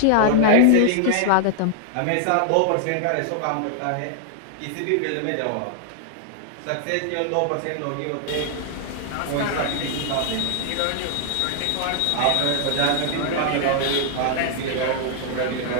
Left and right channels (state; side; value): different; both; correlation 0.00